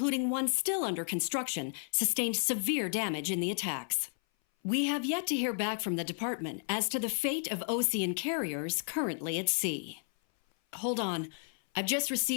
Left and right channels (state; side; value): silent; right; 56 dB below the other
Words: one still under construction, sustained severe damage in the attacks. We have yet to hear back from the department as to the fate of Osean carriers currently at sea. Hold on, I've just